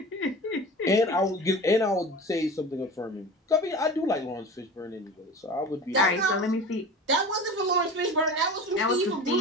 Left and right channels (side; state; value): both; normal; correlation 0.35